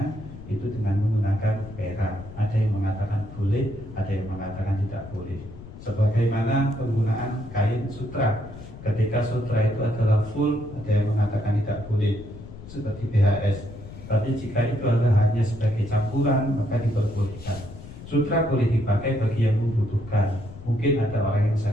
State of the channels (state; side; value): noise; left; rumble, 14 dB below the sound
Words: itu dengan menggunakan perak. Ada yang mengatakan boleh, ada yang mengatakan tidak boleh. Sebagaimana penggunaan kain sutra, ketika sutra itu adalah full, ada yang mengatakan tidak boleh seperti BHS. Tapi jika itu adalah hanya sebagai campuran, maka diperbolehkan. Sutra boleh dipakai bagi yang membutuhkan. Mungkin ada orang yang